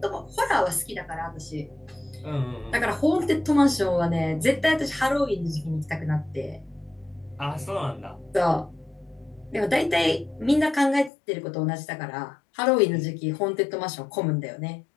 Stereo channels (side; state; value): right; drops out; at 11.1 s